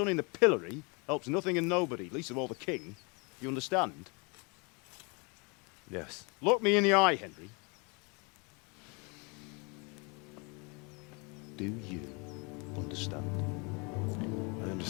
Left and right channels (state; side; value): quieter; right; 31.1 dB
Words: in the pillory helps nothing and nobody, least of all the king. You understand? Yes. Look me in the eye, Henry. Do you understand? I